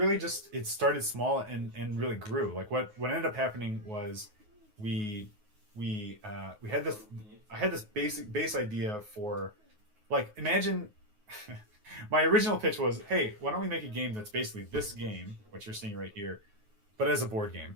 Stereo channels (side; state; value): left; late; 9.5 ms